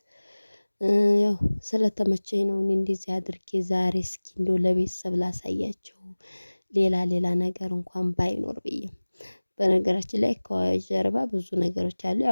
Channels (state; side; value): inverted; both; correlation -1.00